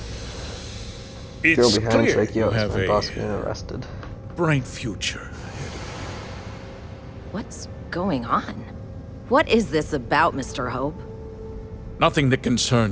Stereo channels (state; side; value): identical; both; correlation 1.00